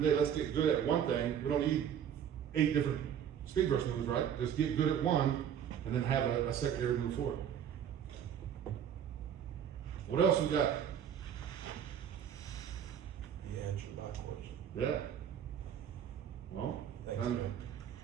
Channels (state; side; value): quieter; left; 9.0 dB